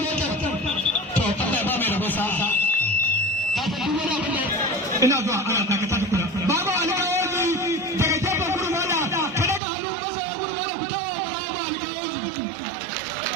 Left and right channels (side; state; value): left; drops out; at 9.6 s